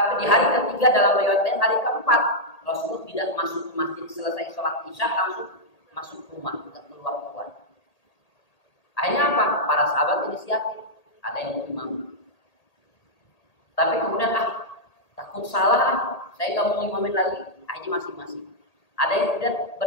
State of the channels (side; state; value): right; late; 1.8 ms